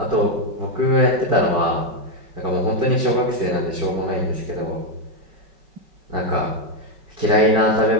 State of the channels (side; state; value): left; late; 5.3 ms